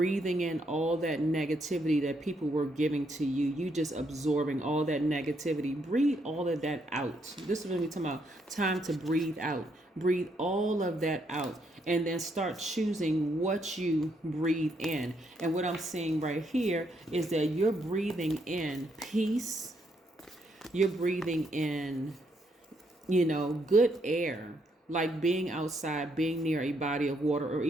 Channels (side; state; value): both; normal; correlation 0.75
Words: in all that negativity that people were giving to you. You just absorbing all that negativity. Breathe all of that out. This is what we're talking about. Time to breathe out. Breathe all of that out. And then start choosing what you breathe in. And what I'm seeing right here is that you're breathing in peace. You're breathing in, good air. Like being outside, being near a body of water, or